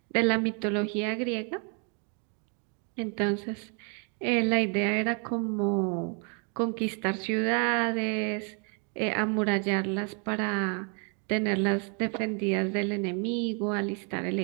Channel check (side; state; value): left; quieter; 39.3 dB